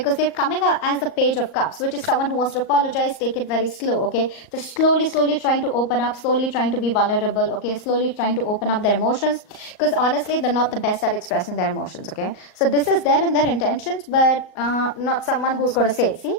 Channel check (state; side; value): late; right; 38 ms